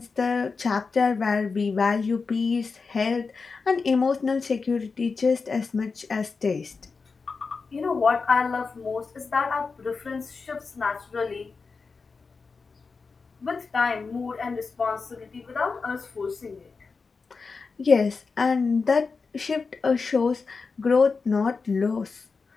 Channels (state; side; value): quieter; right; 4.6 dB